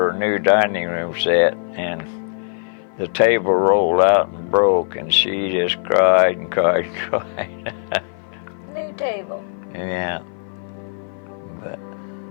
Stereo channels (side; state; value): right; silent; 57 dB below the other